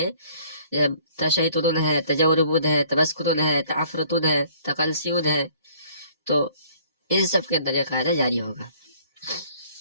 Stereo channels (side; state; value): both; inverted; correlation -0.58